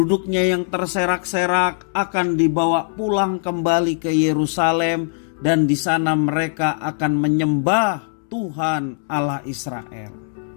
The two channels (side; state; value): right; silent; 65 dB below the other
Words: yang terserak-serak akan dibawa pulang kembali ke Yerusalem dan di sana mereka akan menyembah Tuhan Allah Israel.